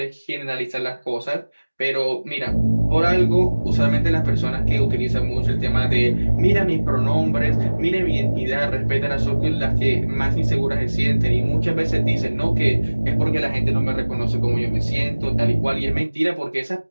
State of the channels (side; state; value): both; inverted; correlation -1.00